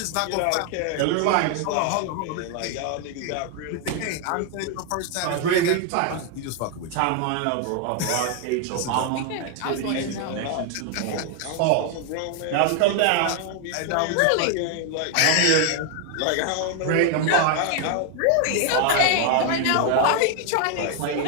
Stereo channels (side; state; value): both; different; correlation 0.01